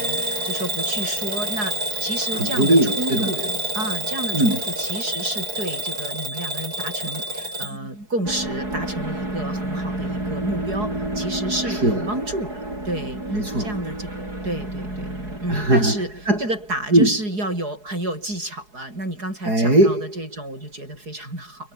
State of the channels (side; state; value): left; late; 4.7 ms